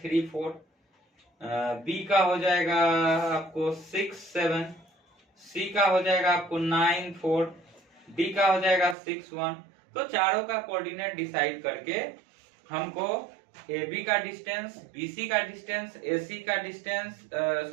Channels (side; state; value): left; drops out; at 9.0 s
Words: 4, बी का हो जाएगा आपको 6 7, सी का हो जाएगा आपको 9 4, डी का हो जाएगा 6 1। तो चारों का कोऑर्डिनेट डिसाइड करके हमको ए बी का डिस्टेंस, बी सी का डिस्टेंस, ए सी का डिस्टेंस,